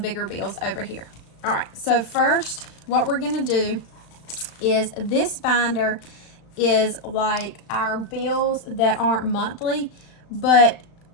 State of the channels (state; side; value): late; right; 35 ms